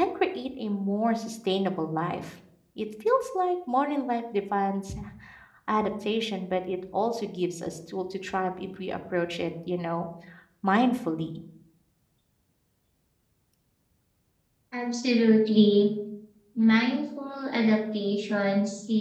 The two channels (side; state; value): both; identical; correlation 1.00